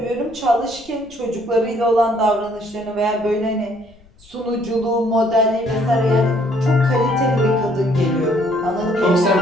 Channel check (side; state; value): left; noise; rumble, 28 dB below the sound